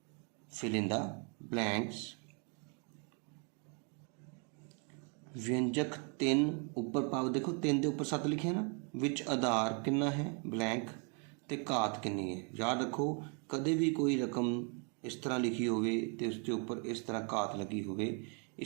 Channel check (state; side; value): quieter; left; 37.9 dB